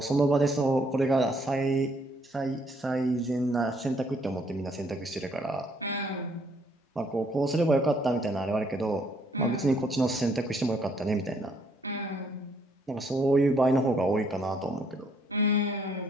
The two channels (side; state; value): both; normal; correlation 0.67